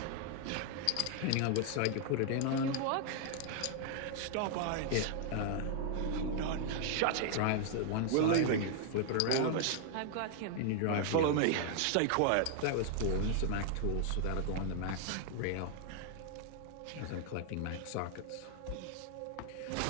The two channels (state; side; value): different; both; correlation 0.00